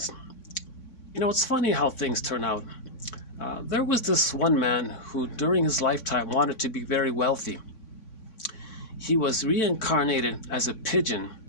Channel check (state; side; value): late; right; 3.6 ms